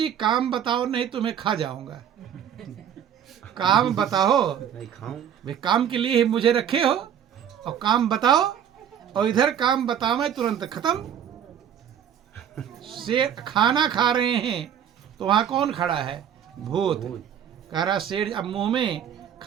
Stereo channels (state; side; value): quieter; left; 9.1 dB